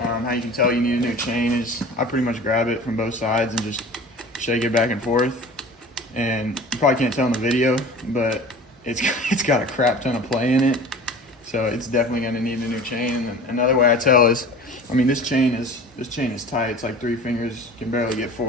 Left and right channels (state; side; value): normal; both; correlation 0.39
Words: you can tell you need a new chain is I pretty much grab it from both sides and just shake it back and forth. And you probably can't tell in the video, but it's got a crap ton of play in it. So it's definitely going to need a new chain. And then another way I tell is, I mean, this chain is tight. It's like 3 fingers, can barely get